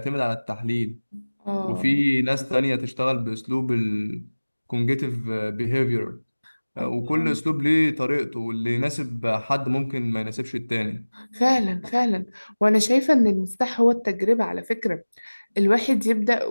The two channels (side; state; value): both; inverted; correlation -1.00